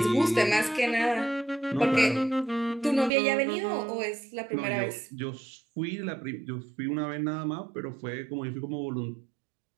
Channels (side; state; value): left; drops out; at 3.1 s